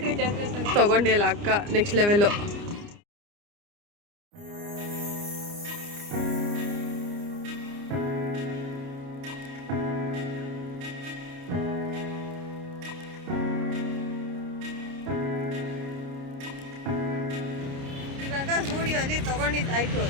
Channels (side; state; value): left; late; 29 ms